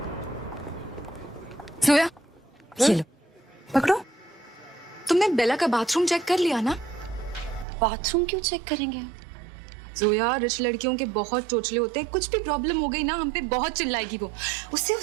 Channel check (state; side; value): drops out; left; at 7.7 s